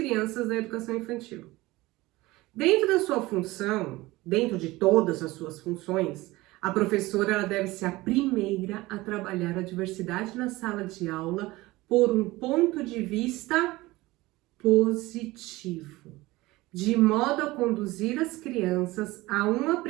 da educação infantil? Dentro da sua função, dentro de todas as suas funções, a professora ela deve ser a primeira a trabalhar a diversidade na sala de aula por um ponto de vista positivo, de modo a conduzir as crianças a um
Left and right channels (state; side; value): quieter; left; 19.8 dB